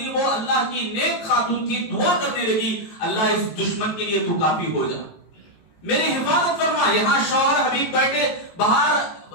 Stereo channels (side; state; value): right; late; 18 ms